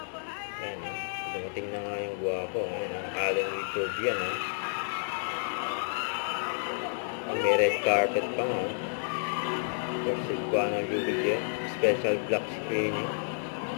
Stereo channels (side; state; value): right; silent; 57 dB below the other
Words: Ayan, dumating na nga yung guwapo. Ayan, ang Alden Richard yan, ha. May red carpet pa nga, for Cebuano Luwilier. Special black screening.